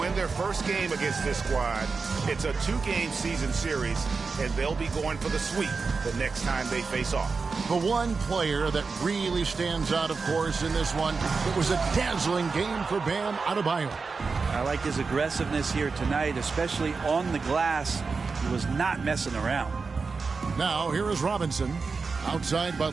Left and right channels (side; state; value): left; quieter; 4.6 dB